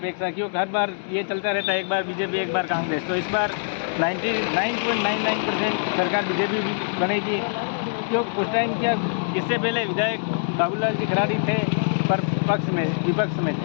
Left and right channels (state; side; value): silent; right; 63 dB below the other